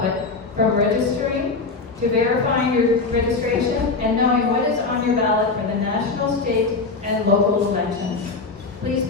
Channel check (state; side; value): quieter; right; 4.0 dB